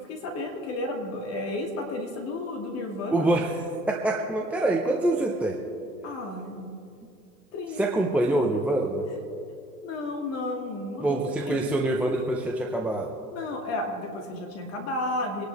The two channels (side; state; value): both; normal; correlation 0.57